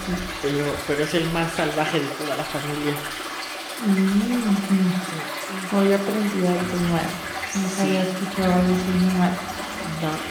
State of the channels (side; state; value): both; identical; correlation 1.00